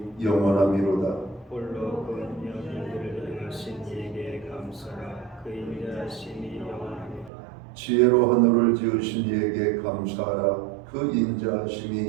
영원하미로다. 홀로 그 연인들을 행하신 이에게 감사라. 그 인자하심이 영원하미로다. 지혜로 하늘을 지으신 이에게 감사하라. 그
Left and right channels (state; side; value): drops out; left; at 7.3 s